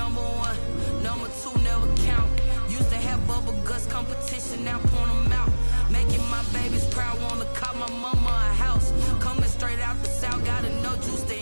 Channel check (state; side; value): inverted; both; correlation -1.00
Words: one, number two never count. Used to have bubble guts competition, now point them out. Making my babies proud, wanna call my mama a house. Coming straight out the south, got enough juice to